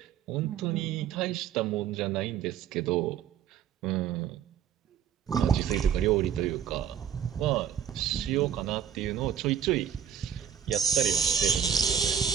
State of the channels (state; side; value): quieter; left; 8.8 dB